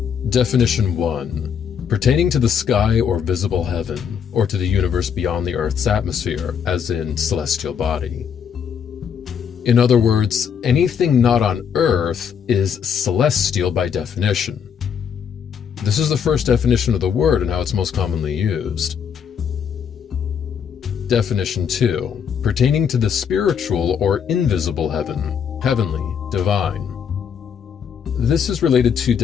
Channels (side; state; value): right; quieter; 7.5 dB